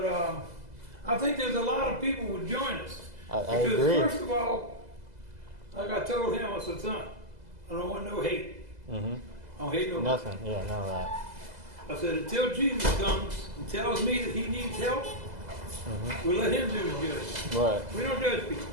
I think there's a lot of people would join us. I Because agree. first of all, like I told him, I said, son, I don't want no hate. Mm-hmm. I don't hate no Nothing. Yeah, none of that. I said, until Jesus comes and tells me that he needs help, we'll let him do the judging. Right. We don't judge people.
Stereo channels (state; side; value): late; left; 2.0 ms